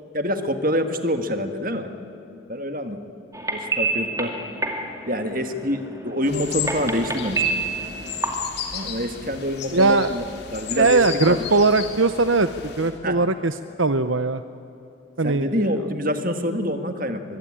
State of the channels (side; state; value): both; normal; correlation -0.04